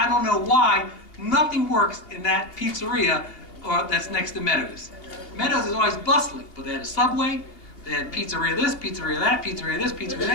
don't know why, nothing works in that pizzeria that's next to Meadows. Meadows is always bustling, but they had a Subway, they had pizzeria this, pizzeria that, pizzeria this, pizzeria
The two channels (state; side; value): late; right; 2.8 ms